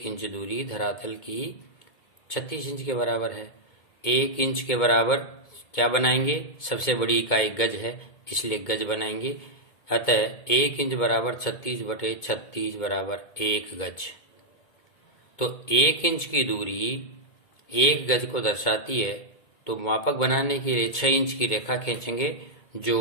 इंच दूरी धरातल की 36 इंच के बराबर है। 1 इंच के बराबर क्या बनाएंगे? सबसे बड़ी इकाई गज है, इसलिए गज बनाएंगे। अतः 1 इंच बराबर 36/36 बराबर 1 गज। तो 1 इंच की दूरी 1 गज को दर्शाती है, तो मापक बनाने के लिए 6 इंच की रेखा खींचेंगे जो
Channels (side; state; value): right; late; 2.2 ms